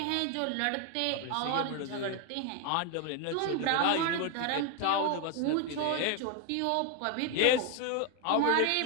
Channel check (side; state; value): both; different; correlation 0.00